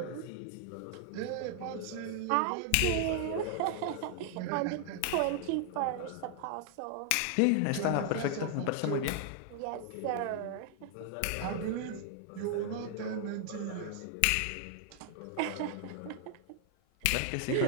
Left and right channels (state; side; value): different; both; correlation 0.00